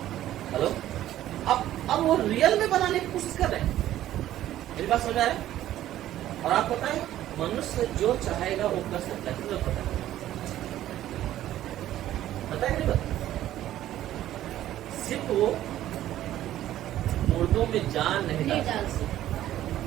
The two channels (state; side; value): quieter; left; 13.1 dB